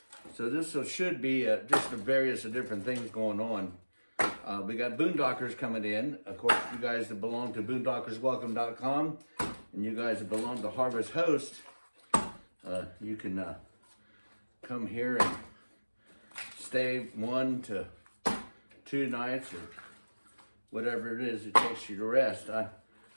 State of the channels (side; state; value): both; inverted; correlation -1.00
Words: So this should be just the various different things going on. We got boondockers coming in. Of course, you guys that belong to boondockerswelcome.com and you guys that belong to Harvest Host, you can come here and stay 1 to 2 nights or whatever it is it takes you to rest.